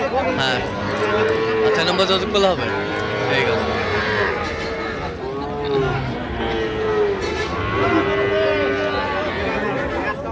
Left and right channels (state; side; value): identical; both; correlation 1.00